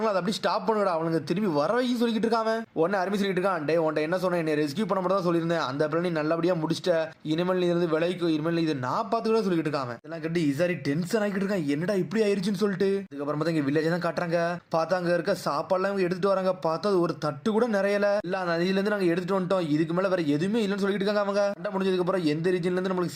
அதை அப்படி ஸ்டாப் பண்ணுடா, அவனுக்கு திரும்பி வர வைக்கும் சொல்லிட்டு இருக்காங்க. உடனே அருமை சொல்லிட்டு இருக்கான், டே உன்ட்ட என்ன சொன்னேன், என்னை ரெஸ்கியூ பண்ண மட்டும் தான் சொல்லியிருந்தேன், அந்த பிளான் நல்லபடியா முடிச்சிட்ட, இனிமேல் நீ இருந்து விலைக்கு இனிமேல் இது நான் பார்த்துக்கிட்ட சொல்லிட்டு இருக்காங்க. இதெல்லாம் கட்டி இசாரி டென்ஷன் ஆகிட்டு இருக்கான், என்னடா இப்படி ஆயிருச்சுன்னு சொல்லிட்டு. அதுக்கப்புறம் பார்த்தா இங்க வில்லேஜ் தான் காட்டுறாங்க. பார்த்தா அங்க இருக்க சாப்பாடுலாம் இவங்க எடுத்துட்டு வராங்க. பார்த்தா ஒரு தட்டு கூட நிறையல இல்ல, நதியில இருந்து நாங்க எடுத்துட்டு வந்துட்டோம், இதுக்கு மேல வேற எதுவுமே இல்லைன்னு சொல்லிட்டு இருக்காங்க. அவங்க சண்டை முடிஞ்சதுக்கு அப்புறம் எந்த ரீஜன்ல இருந்து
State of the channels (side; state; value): both; identical; correlation 1.00